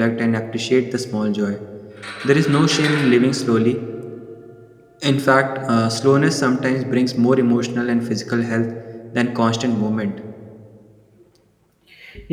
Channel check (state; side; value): identical; both; correlation 1.00